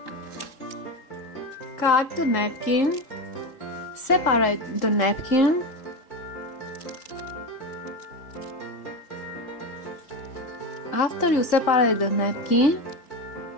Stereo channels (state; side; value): late; right; 3.8 ms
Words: Cut the napkin. Separate the napkin. After you separate the napkin,